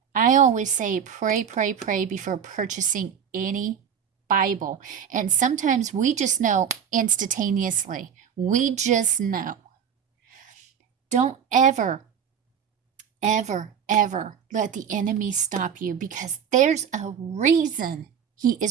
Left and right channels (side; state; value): left; quieter; 7.9 dB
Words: I always say pray, pray, pray before purchasing any Bible. And sometimes we just know instantaneously. We just know. Don't ever let the enemy stop you, because there's a reason he